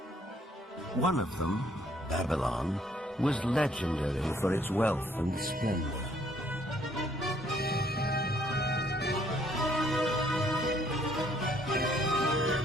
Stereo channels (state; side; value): normal; both; correlation 0.65